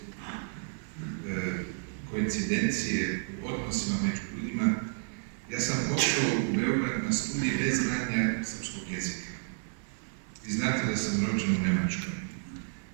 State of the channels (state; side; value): silent; left; 57 dB below the other